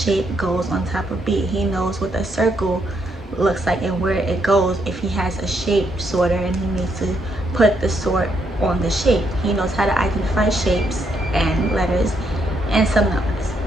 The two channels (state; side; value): normal; both; correlation 0.76